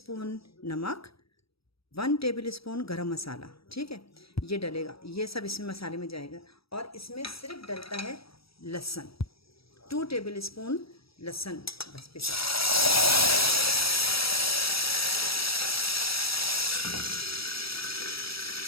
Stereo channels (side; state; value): right; late; 0.76 ms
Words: नमक, 1 टेबल स्पून गरम मसाला। ठीक है, ये डलेगा, ये सब इसमें मसाले में जाएगा। और इसमें सिर्फ डलता है लहसुन, 2 टेबल स्पून लहसुन बस पिसा।